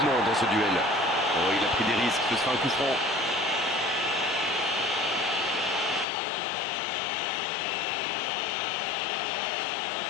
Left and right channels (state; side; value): drops out; right; at 6.1 s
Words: dans ce duel. Oh, il a pris des risques, ce sera un coup franc.